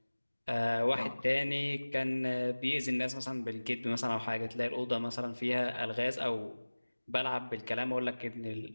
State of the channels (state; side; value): inverted; both; correlation -1.00